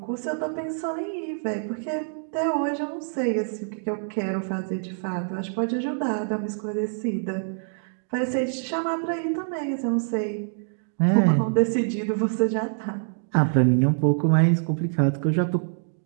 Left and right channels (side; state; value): left; silent; digital silence